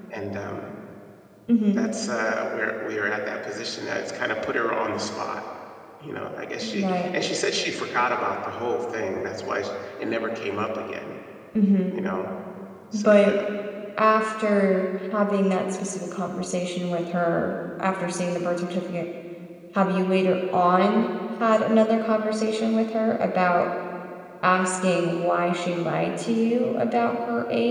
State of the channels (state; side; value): identical; both; correlation 1.00